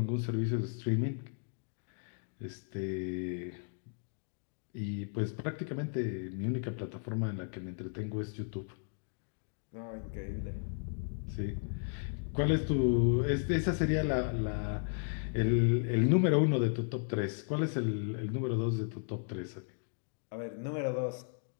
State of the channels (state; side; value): silent; right; digital silence